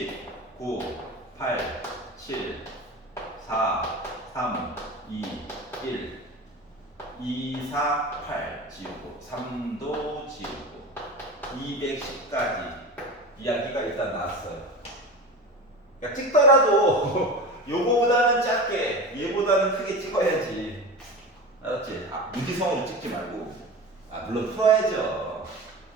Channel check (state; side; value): normal; both; correlation 0.30